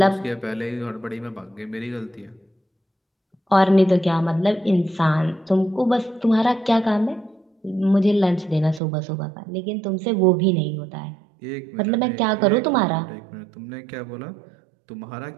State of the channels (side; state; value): left; drops out; at 8.8 s